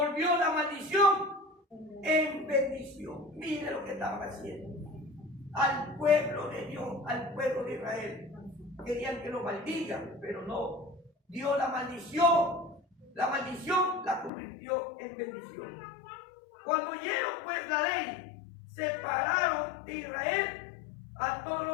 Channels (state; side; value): drops out; right; at 14.3 s